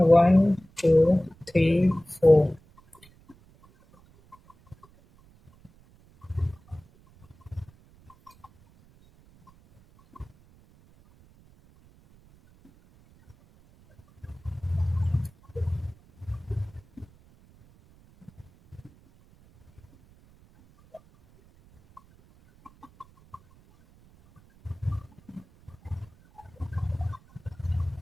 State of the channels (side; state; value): right; noise; rumble, 28 dB below the sound